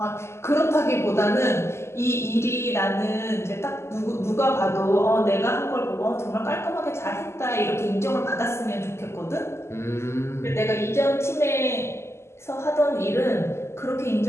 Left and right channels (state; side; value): late; right; 0.13 ms